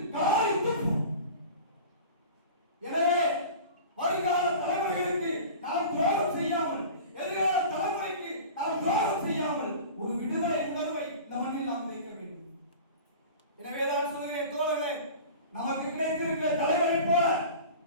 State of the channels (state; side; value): inverted; both; correlation -0.37